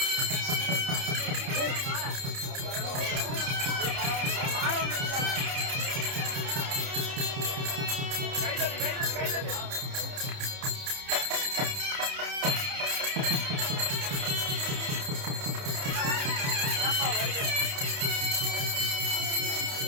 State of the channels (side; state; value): left; late; 30 ms